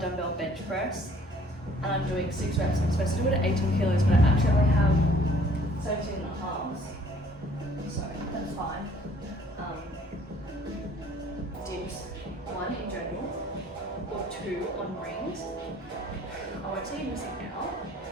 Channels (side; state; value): both; normal; correlation 0.58